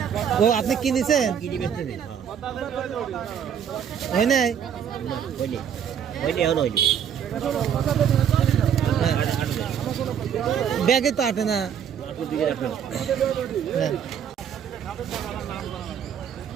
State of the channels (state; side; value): quieter; left; 8.4 dB